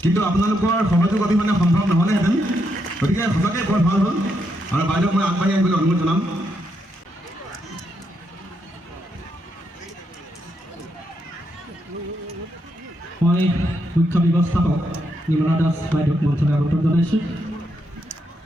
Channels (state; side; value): normal; both; correlation 0.80